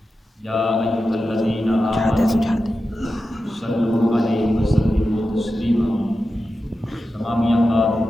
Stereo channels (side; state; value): both; normal; correlation 0.92